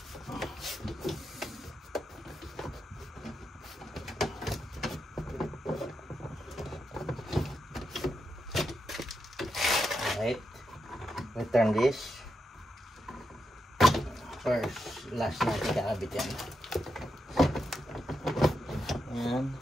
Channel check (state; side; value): normal; both; correlation 0.85